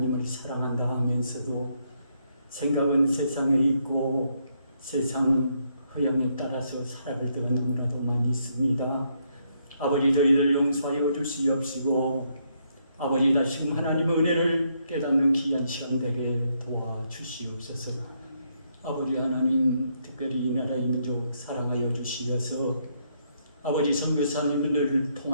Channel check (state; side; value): inverted; both; correlation -0.75